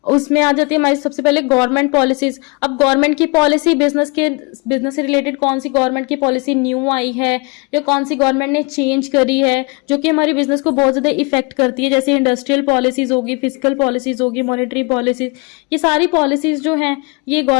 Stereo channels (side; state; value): right; quieter; 30.2 dB